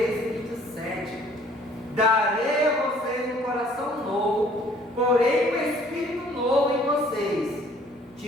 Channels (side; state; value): both; normal; correlation 0.57